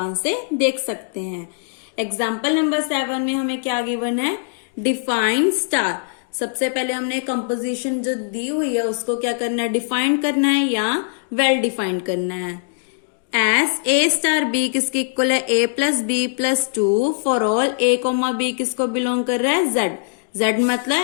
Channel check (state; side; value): silent; right; digital silence